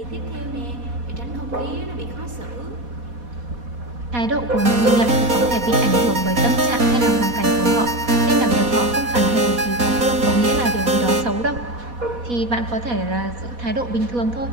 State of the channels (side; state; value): left; late; 4.1 ms